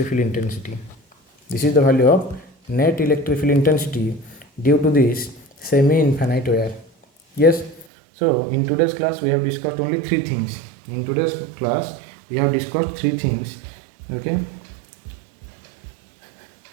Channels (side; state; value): left; drops out; at 7.9 s